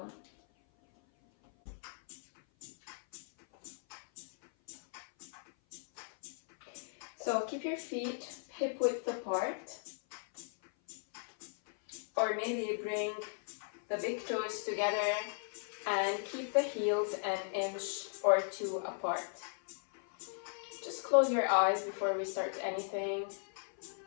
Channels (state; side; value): silent; right; 53 dB below the other